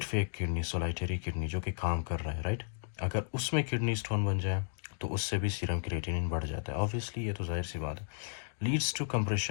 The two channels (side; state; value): right; silent; digital silence